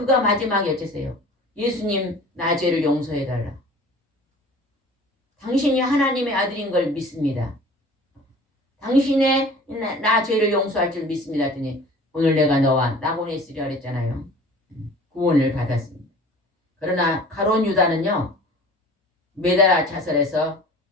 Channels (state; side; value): normal; both; correlation 0.44